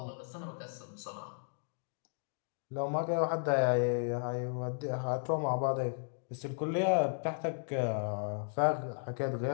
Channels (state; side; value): silent; right; digital silence